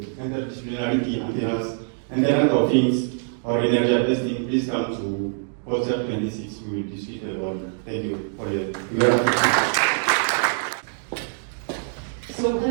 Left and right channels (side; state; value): left; silent; digital silence